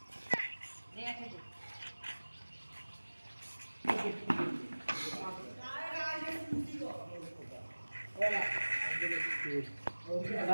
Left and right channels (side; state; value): both; inverted; correlation -1.00